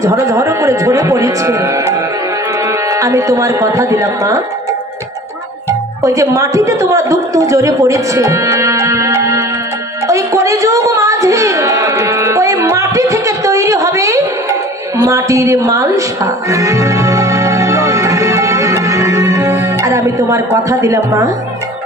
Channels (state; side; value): normal; both; correlation 0.44